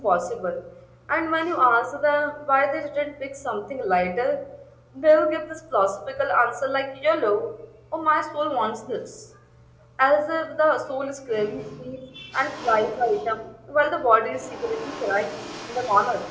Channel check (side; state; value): both; identical; correlation 1.00